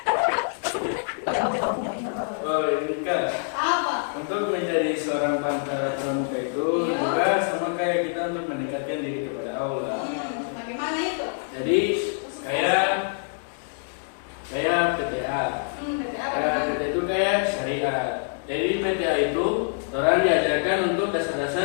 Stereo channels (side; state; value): right; silent; digital silence